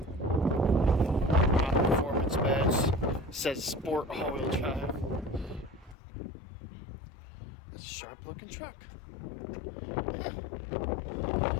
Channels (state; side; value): drops out; right; at 6.0 s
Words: Performance badge says Sport all-wheel drive. It's a sharp-looking truck. Huh.